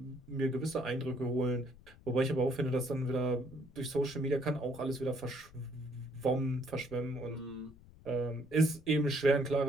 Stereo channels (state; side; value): noise; left; rumble, 22 dB below the sound